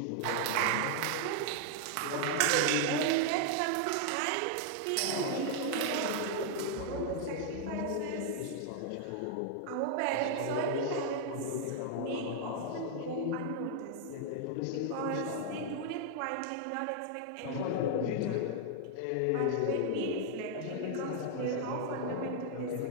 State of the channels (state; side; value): different; both; correlation 0.00